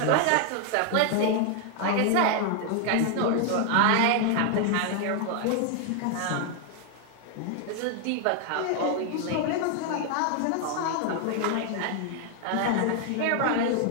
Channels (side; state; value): both; different; correlation 0.00